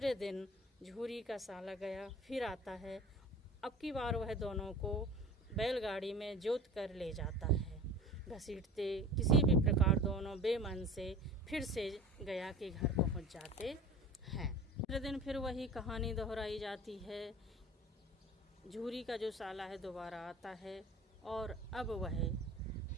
दिन झूरी का साला गया फिर आता है। अब की बार वह दोनों को बैलगाड़ी में जोत कर ले जाता है। घसीटते किसी भी प्रकार दोनों बेमन से फिर से गया के घर पहुंच जाते हैं। दूसरे दिन फिर वही कहानी दोहराई जाती है। झूरी का जो साला है दोबारा आता है और अब वह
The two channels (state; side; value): normal; both; correlation 0.40